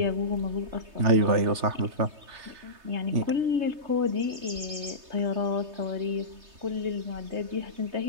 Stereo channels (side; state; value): left; late; 3.2 ms